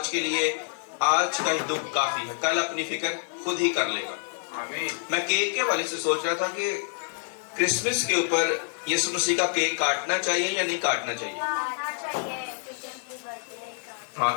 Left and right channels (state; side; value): silent; right; 58 dB below the other